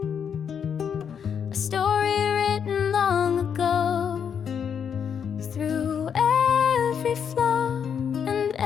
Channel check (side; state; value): right; quieter; 7.6 dB